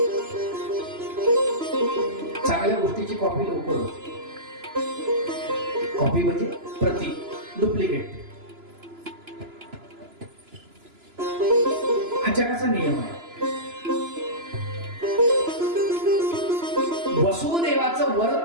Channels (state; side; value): late; left; 2.9 ms